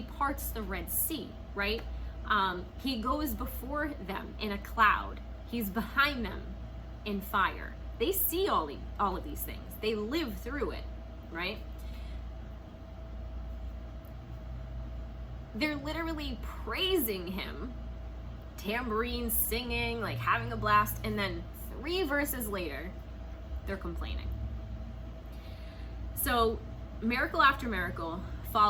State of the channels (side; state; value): both; identical; correlation 1.00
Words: parts the Red Sea, right? He goes before them in a cloud. He's behind them in fire. They see all of these things. They live through it, right? They're literally praising him, tambourine singing, like having a blast, and then 3 verses later, they're complaining. So miracle after miracle,